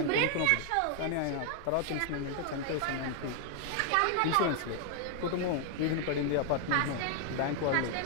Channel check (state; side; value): different; both; correlation 0.00